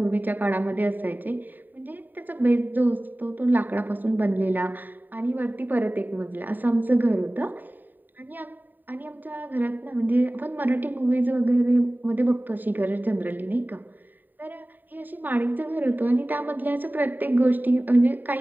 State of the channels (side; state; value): left; late; 0.089 ms